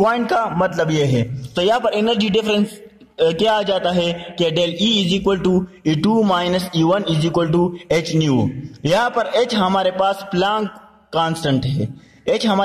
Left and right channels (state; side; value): identical; both; correlation 1.00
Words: का मतलब ये है। तो यहाँ पर एनर्जी डिफरेंस क्या आ जाता है कि del E is equal to E2 minus E1 is equal to H nu. यहाँ पर H हमारे पास प्लांक कांस्टेंट है, H